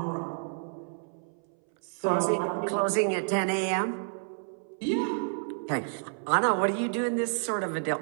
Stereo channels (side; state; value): left; silent; 58 dB below the other